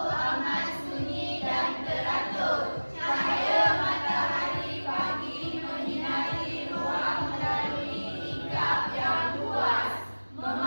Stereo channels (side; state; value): both; inverted; correlation -1.00